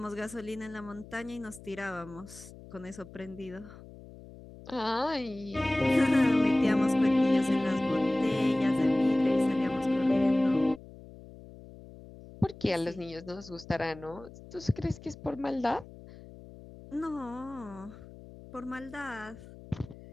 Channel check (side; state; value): left; noise; hum, 18 dB below the sound